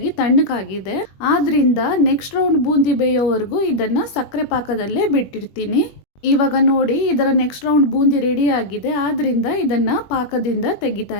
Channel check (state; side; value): late; right; 21 ms